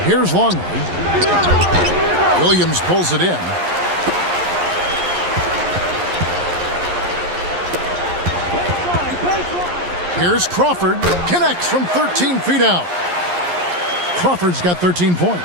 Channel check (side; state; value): left; late; 11 ms